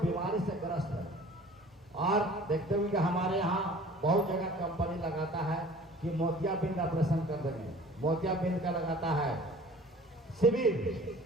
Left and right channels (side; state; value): both; normal; correlation 0.47